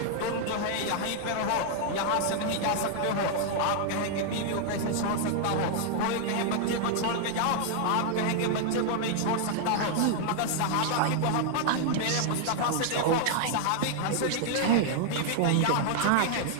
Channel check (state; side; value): different; both; correlation 0.00